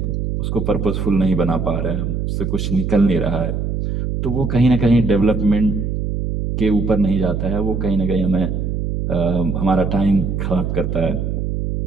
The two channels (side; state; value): right; noise; hum, 2 dB below the sound